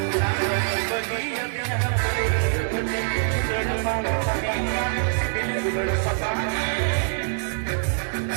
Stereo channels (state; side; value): silent; left; digital silence